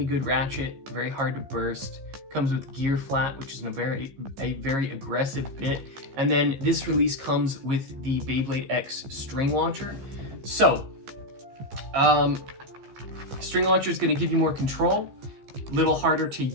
good ratchet, very hard to burst. Comes with gear flat, which is a very aggressive bit. And then this release comes with the Beyblade X string launcher. So, string launcher is going to give you more control, a little harder to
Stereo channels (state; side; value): late; left; 15 ms